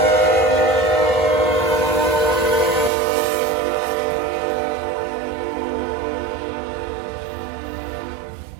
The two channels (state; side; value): drops out; left; at 2.9 s